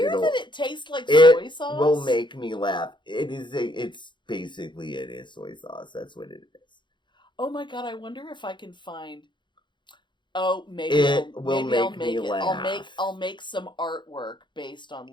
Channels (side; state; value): right; late; 0.23 ms